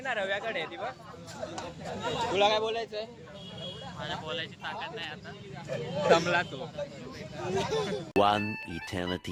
ना रव्याकडे ती बघ. तुला काय बोलायचंय. मला बोलायची ताकद नाही आता. दमला तो. One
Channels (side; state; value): both; identical; correlation 1.00